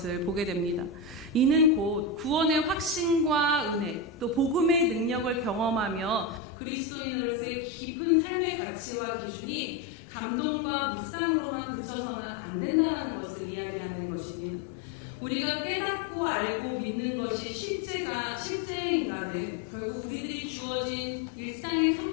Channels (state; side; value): drops out; right; at 6.4 s